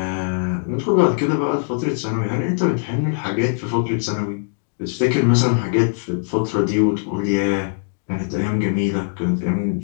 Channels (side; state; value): right; silent; digital silence